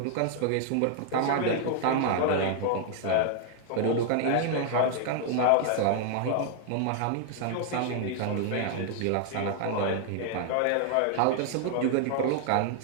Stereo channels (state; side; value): different; both; correlation 0.00